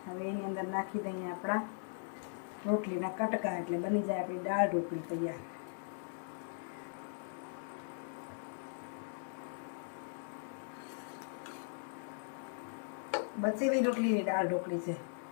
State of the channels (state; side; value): silent; right; digital silence